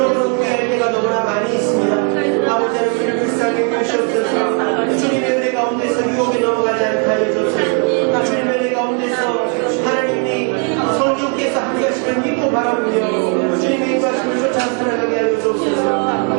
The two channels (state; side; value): quieter; left; 39.9 dB